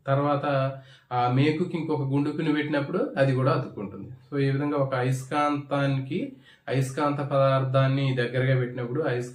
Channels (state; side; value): identical; both; correlation 1.00